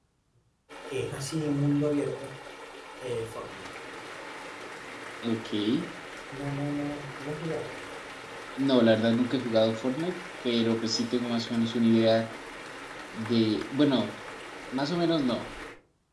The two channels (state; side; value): identical; both; correlation 1.00